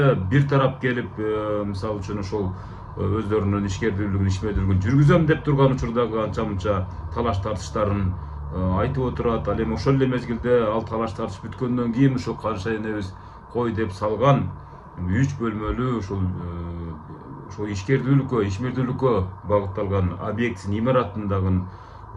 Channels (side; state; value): both; identical; correlation 1.00